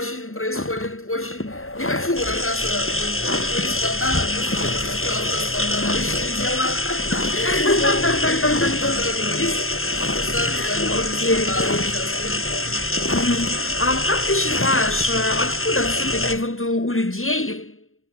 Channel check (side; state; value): right; late; 0.61 ms